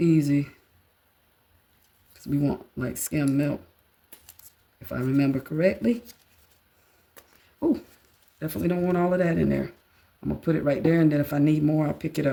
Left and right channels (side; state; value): both; identical; correlation 1.00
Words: Because we want like skim milk, if I remember correctly. Oh, definitely don't want all of that in there. I'm going to put it right there, and then if I need more, I'll pick it